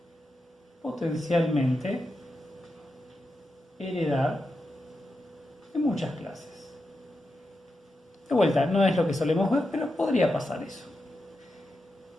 potencialmente heredar de muchas clases. De vuelta, no es lo que solemos ver, pero podría pasar eso.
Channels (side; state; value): both; normal; correlation 0.88